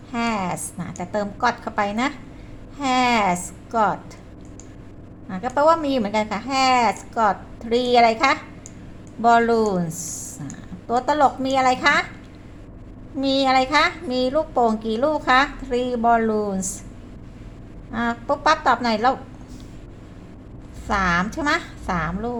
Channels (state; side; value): identical; both; correlation 1.00